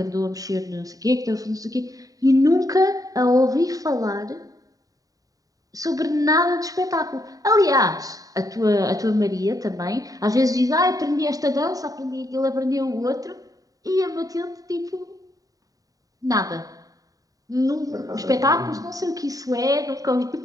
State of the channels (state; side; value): late; left; 0.17 ms